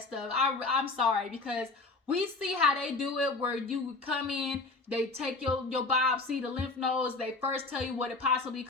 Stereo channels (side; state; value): right; quieter; 3.5 dB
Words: stuff. I'm sorry, because we see how they do it, where you come in, they take your biopsy, the lymph nodes, they first tell you what it possibly